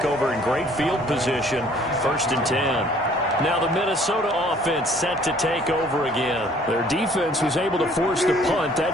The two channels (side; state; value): both; normal; correlation 0.57